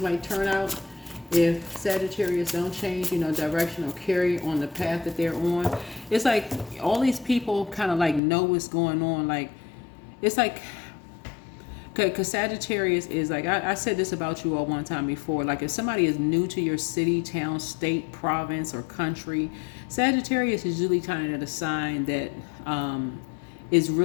might turn out if Sagittarius don't change, direction or carry on the path that they're on. It's like all these people kind of like know what's going on. Like, it's like, because Sagittarius is like, I said this about you all one time before. Like, if somebody is new to your city, town, state, province, or country, Sagittarius is usually kind of the sign that is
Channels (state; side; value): drops out; right; at 8.2 s